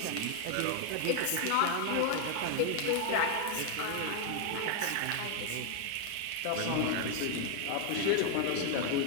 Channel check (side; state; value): both; different; correlation 0.00